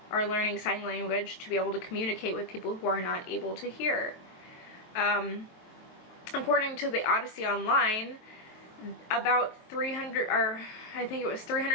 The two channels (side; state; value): right; late; 23 ms